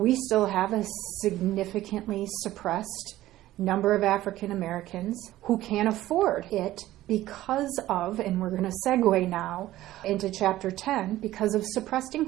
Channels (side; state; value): left; quieter; 15.1 dB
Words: still have a significantly suppressed number of African Americans who can't afford it because of, and we're going to segue now into Chapter 10, because of suppressed